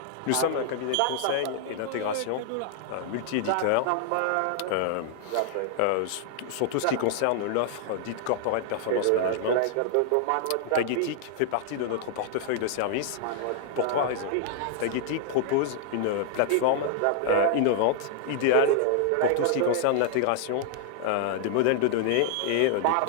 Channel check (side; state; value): both; different; correlation 0.00